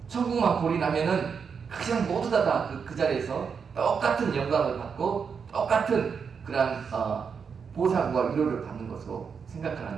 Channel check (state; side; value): quieter; left; 6.2 dB